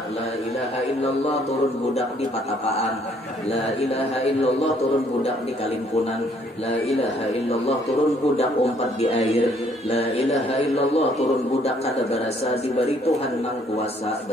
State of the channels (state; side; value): normal; both; correlation 0.64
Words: la ilaha illallah turun budak di patapaan la ilaha illallah turun budak di kalimpunan la ilaha illallah turun budak umpat di air la ilaha illallah turun budak kada barasa diberi Tuhan nang kuasa